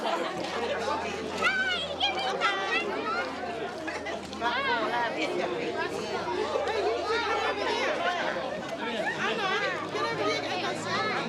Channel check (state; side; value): identical; both; correlation 1.00